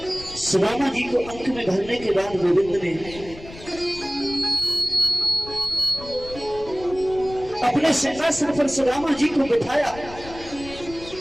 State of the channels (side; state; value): left; noise; rumble, 16 dB below the sound